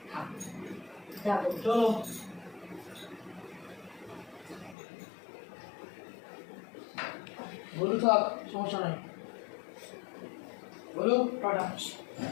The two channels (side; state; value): right; drops out; at 4.8 s